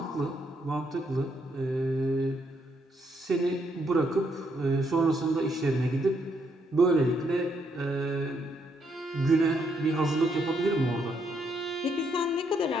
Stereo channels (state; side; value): normal; both; correlation 0.75